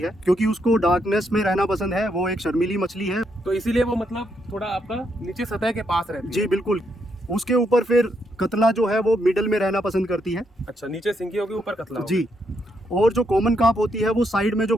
क्योंकि उसको डार्कनेस में रहना पसंद है। वो एक शर्मीली मछली है, तो इसीलिए वो मतलब थोड़ा आपका नीचे सतह के पास रहती है। जी बिल्कुल। उसके ऊपर फिर कतला जो है वो मिडल में रहना पसंद करती है। अच्छा, नीचे सिंगी होगी, ऊपर कतला होगा। जी। और जो कॉमन कार्प होती है वो साइड में जो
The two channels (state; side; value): normal; both; correlation 0.77